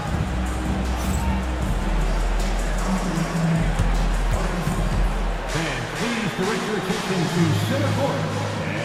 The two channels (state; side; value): identical; both; correlation 1.00